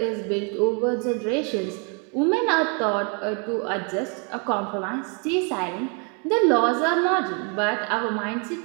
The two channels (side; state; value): left; quieter; 36.8 dB